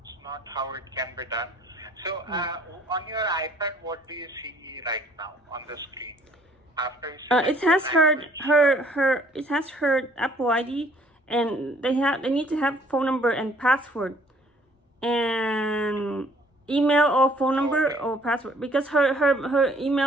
not how it can be done. So on your iPad, what do you see right now on the screen? After it has it has her Apple ID, and they need to have phone number and password, and email or phone number or password, because her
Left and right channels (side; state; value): both; normal; correlation 0.59